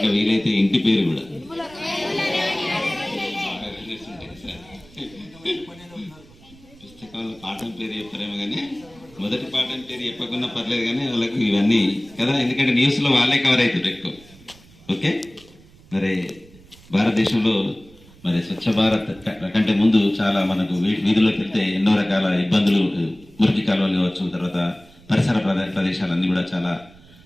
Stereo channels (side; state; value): right; noise; rumble, 24 dB below the sound